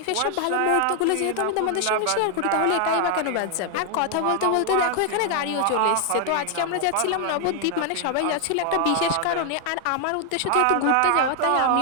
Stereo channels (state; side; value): different; both; correlation 0.00